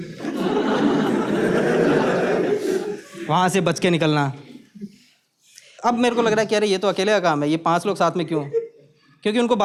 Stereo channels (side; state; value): both; identical; correlation 1.00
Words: वहां से बच के निकलना। अब मेरे को लग रहा है कि अरे ये तो अकेले का काम है, ये 5 लोग साथ में क्यों? क्योंकि उनको